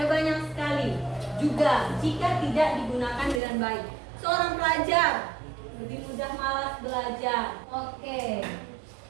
banyak sekali. Juga jika tidak digunakan dengan baik. Seorang pelajar lebih mudah malas belajar. Oke.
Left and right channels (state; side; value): drops out; left; at 3.4 s